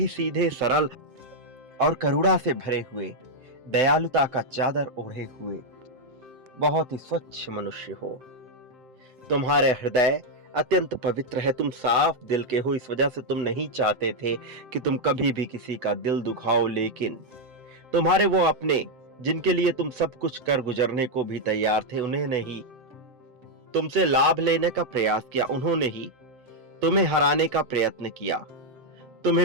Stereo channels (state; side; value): late; left; 7.6 ms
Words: सीधे, सरल और करुणा से भरे हुए, दयालुता का चादर ओढ़े हुए बहुत ही स्वच्छ मनुष्य हो। तुम्हारे हृदय अत्यंत पवित्र है, तुम साफ दिल के हो। इस वजह से तुम नहीं चाहते थे कि तुम कभी भी किसी का दिल दुखाओ, लेकिन तुम्हारे वो अपने जिनके लिए तुम सब कुछ कर गुजरने को भी तैयार थे, उन्होंने ही तुमसे लाभ लेने का प्रयास किया। उन्होंने ही तुम्हें हराने का प्रयत्न किया।